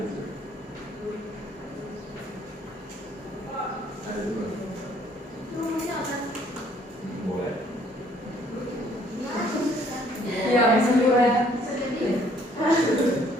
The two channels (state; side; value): normal; both; correlation 0.62